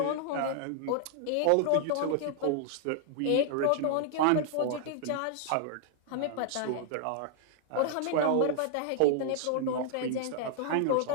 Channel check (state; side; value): different; both; correlation 0.00